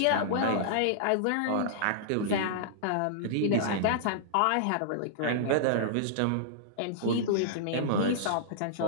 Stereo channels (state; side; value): different; both; correlation -0.02